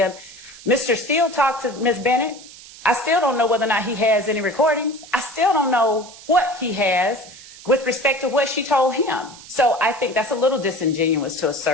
Mr. Steele talked to Ms. Bennett. I still don't know whether or not he has any recordings. I still don't know what he has with respect to what she told him. So I think that's a little disingenuous to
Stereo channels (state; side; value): noise; right; hiss, 18 dB below the sound